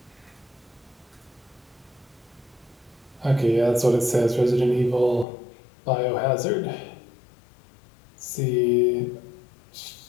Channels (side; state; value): right; drops out; at 5.2 s